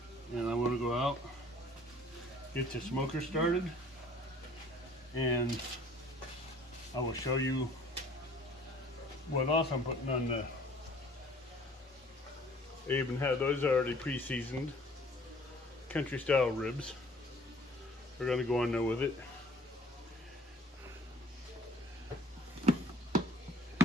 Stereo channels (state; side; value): normal; both; correlation 0.53